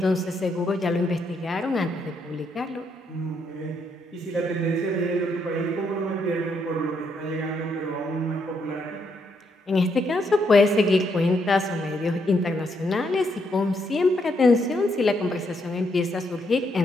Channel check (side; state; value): both; normal; correlation 0.76